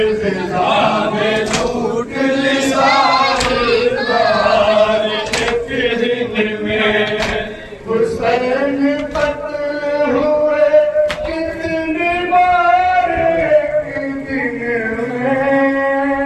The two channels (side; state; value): both; identical; correlation 1.00